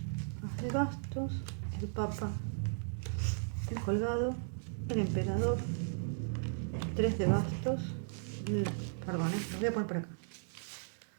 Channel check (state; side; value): silent; left; digital silence